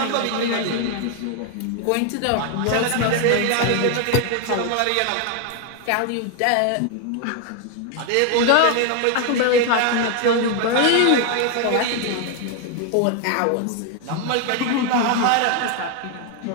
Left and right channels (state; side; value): different; both; correlation 0.01